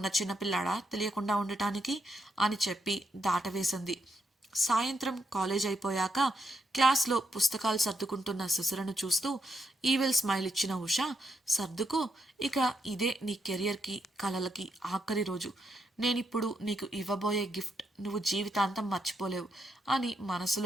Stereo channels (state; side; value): normal; both; correlation 0.79